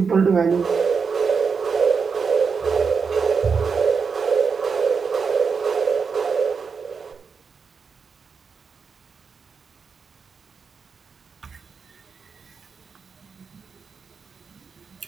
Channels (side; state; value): left; quieter; 5.5 dB